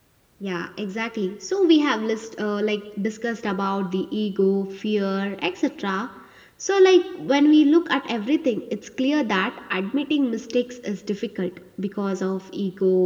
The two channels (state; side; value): identical; both; correlation 1.00